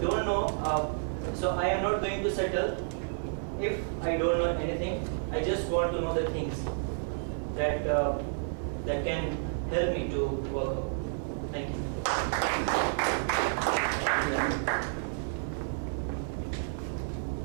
don't know. So I am not going to settle if I don't know anything. I just want to know the things that that can help me to work out. Thank you.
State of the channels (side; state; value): left; silent; digital silence